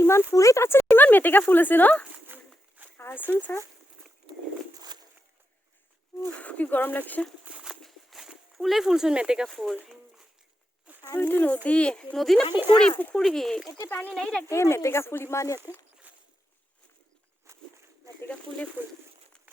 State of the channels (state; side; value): normal; both; correlation 0.86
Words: ইমান ফুল তাত ইমান মেটেকা ফুল আছে ন আছোন চা কি গৰম লাগছে ফুলে ফুলচোন মেটেকা ফুল এইটো নদী না পুখুৰী এতিয়া পানী নাই এই মেটেকা ফুল ইমান ইয়াতে মেটেকা ফুলে ফুল